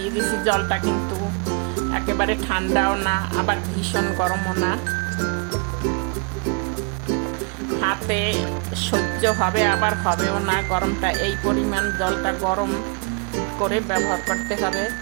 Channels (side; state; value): left; quieter; 35.6 dB